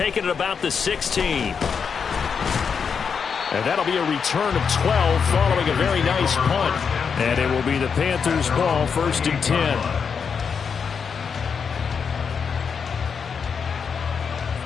it about the 16. And that'll be a return of 12 following a very nice punt. And it will be the Panthers' ball, 1st and 10.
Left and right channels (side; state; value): right; quieter; 6.3 dB